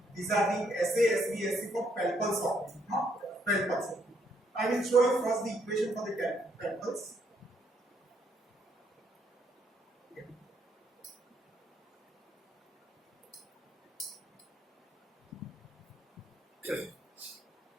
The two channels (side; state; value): both; normal; correlation 0.72